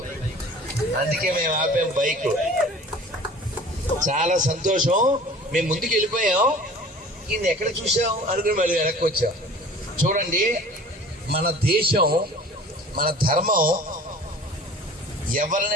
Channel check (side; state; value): both; normal; correlation 0.44